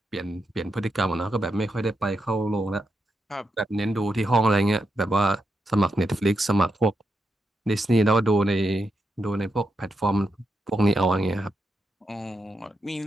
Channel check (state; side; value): normal; both; correlation 0.85